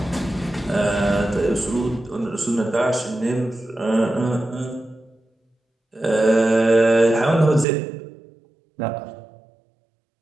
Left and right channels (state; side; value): drops out; left; at 7.7 s